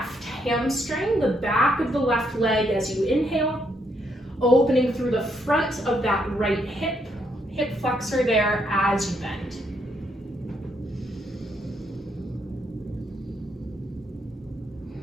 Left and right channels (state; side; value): normal; both; correlation 0.75